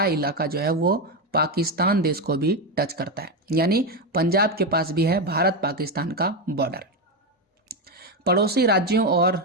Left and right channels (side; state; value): both; normal; correlation 0.11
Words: इलाका जो है वो पाकिस्तान देश को भी टच करता है, यानी पंजाब के पास भी है भारत पाकिस्तान का बॉर्डर। पड़ोसी राज्यों